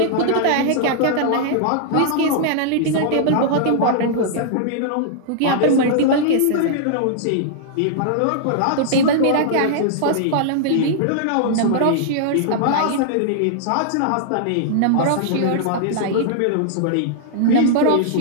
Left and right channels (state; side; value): different; both; correlation -0.01